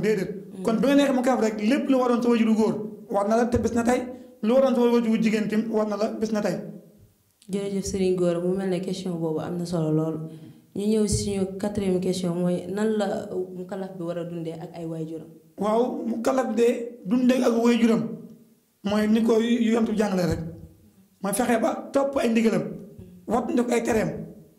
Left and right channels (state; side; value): identical; both; correlation 1.00